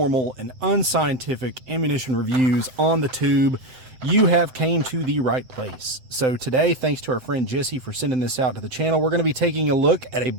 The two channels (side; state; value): left; late; 7.7 ms